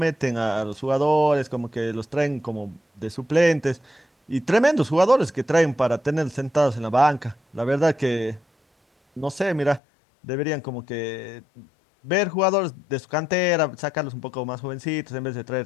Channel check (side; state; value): right; drops out; at 9.8 s